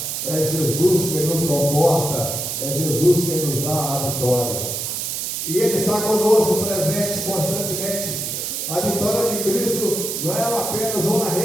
é Jesus que nos conforta, é Jesus que nos dá a vitória. E Ele está conosco, presente constantemente. A vitória de Cristo não é apenas uma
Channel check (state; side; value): noise; right; hiss, 3 dB below the sound